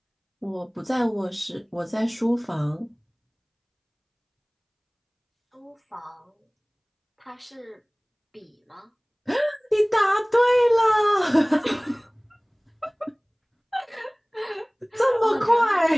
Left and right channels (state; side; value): identical; both; correlation 1.00